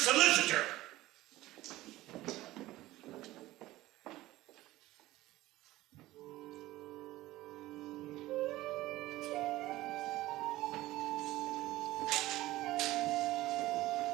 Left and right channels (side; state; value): left; quieter; 17.1 dB